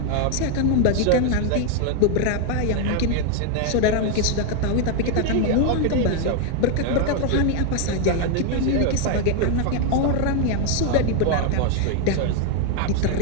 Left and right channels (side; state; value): both; different; correlation 0.01